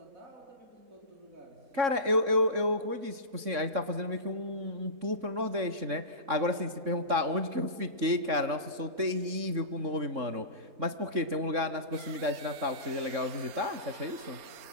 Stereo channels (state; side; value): late; left; 3.6 ms